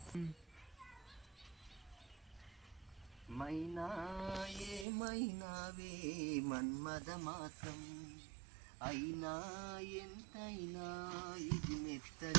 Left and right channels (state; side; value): drops out; left; at 4.9 s